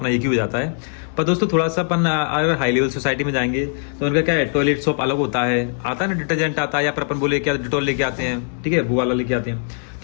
एक ही हो जाता है। पर दोस्तों थोड़ा सा अपन अगर हाई लेवल सोसाइटी में जाएंगे तो उनका क्या है, टॉयलेट सॉप अलग होता है, आता है ना, डिटर्जेंट आता है, या फिर अपन बोले क्या डिटॉल लेके आते हैं, ठीक है, वो वाला लेके आते हैं।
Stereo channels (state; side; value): silent; right; 65 dB below the other